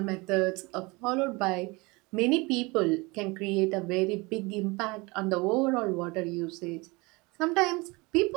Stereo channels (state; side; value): quieter; left; 25.4 dB